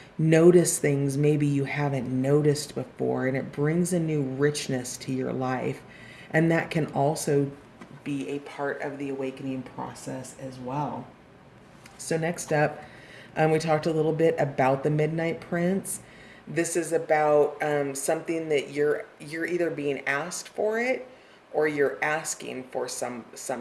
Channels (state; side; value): identical; both; correlation 1.00